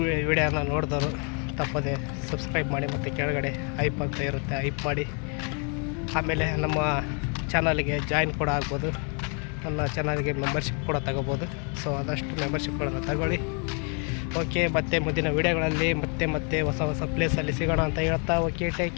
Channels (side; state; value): right; quieter; 38.4 dB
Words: ವಿಡಿಯೋನ ನೋಡಿದವರು ತಪ್ಪದೆ ಸಬ್ಸ್ಕ್ರೈಬ್ ಮಾಡಿ, ಮತ್ತು ಕೆಳಗಡೆ ಐಪ್ ಅಂತ ಇರುತ್ತೆ, ಐಪ್ ಮಾಡಿ. ಆಮೇಲೆ ನಮ್ಮ ಚಾನಲ್ಗೆ ಜಾಯಿನ್ ಕೂಡ ಆಗ್ಬೋದು, ನನ್ನ ಚಾನಲ್ಗೆ ಮೆಂಬರ್ಶಿಪ್ ಕೂಡ ತಗೋಬೋದು. ಸೊ ಆದಷ್ಟು ಮೆಂಬರ್ಶಿಪ್ಗಳನ್ನು ತಗೊಳ್ಳಿ. ಓಕೆ, ಮತ್ತೆ ಮುಂದಿನ ವೀಡಿಯೋಗಳಲ್ಲಿ ಮತ್ತೆ ಹೊಸ ಪ್ಲೇಸಲ್ಲಿ ಸಿಗೋಣ ಅಂತ ಹೇಳ್ತಾ, ಓಕೆ, ಟೇಕ್